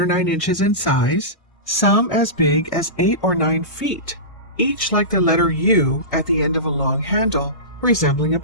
or 9 inches in size, some as big as 8 or 9 feet, each like the letter U at the end of a long handle, resembling a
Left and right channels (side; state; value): right; late; 1.6 ms